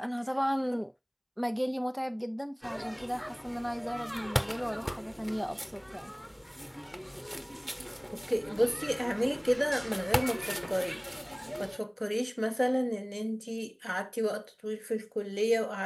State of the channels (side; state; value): both; identical; correlation 1.00